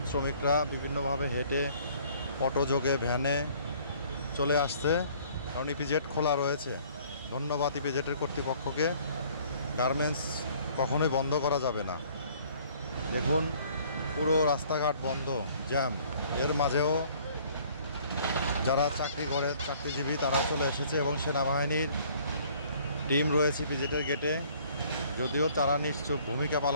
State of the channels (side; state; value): both; inverted; correlation -0.57